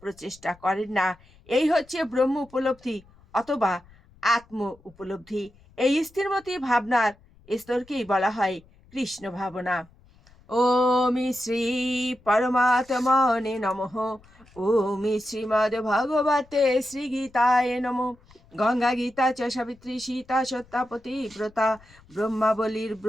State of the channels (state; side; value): noise; left; rumble, 27 dB below the sound